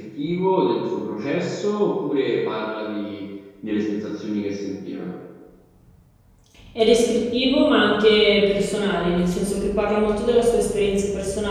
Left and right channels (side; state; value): both; identical; correlation 1.00